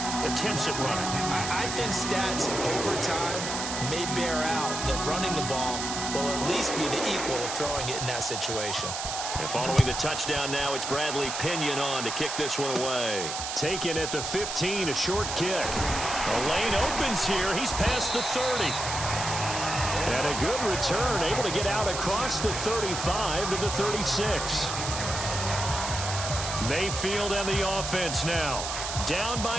attempts at running. I think stats over time may bear out that running the ball will at least be the equal of throwing it in that situation. And following the touchdown now, it's Bradley Pinion on to kick this one away. Taken at the 15, a short kick. A lane opens here. He's past the 30. And a good return, able to get out across the 35 to the 36. Mayfield and the offense now. Down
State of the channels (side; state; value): right; noise; hiss, 4 dB below the sound